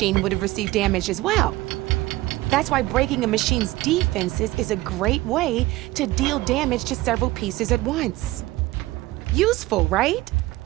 would have received damage as well. That's why breaking a machine's defenses is a great way to deal damage to several pieces at once. Useful, right?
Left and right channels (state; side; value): quieter; left; 18.5 dB